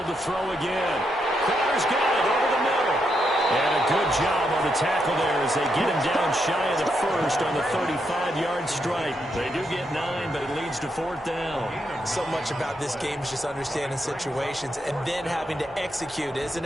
to throw again. Crowder's got it over the middle. And a good job on the tackle there as they get him down shy of the first on the 35-yard strike. They do get 9, but it leads to 4th down. So much about this game is just understanding situations and then having to execute, isn't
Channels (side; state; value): both; normal; correlation 0.81